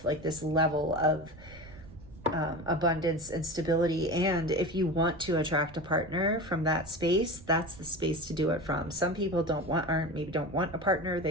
like this level of abundance and stability. And if you want to attract a partner from that space, that's the space to do it from. Some people don't want a partner.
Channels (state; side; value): noise; right; rumble, 18 dB below the sound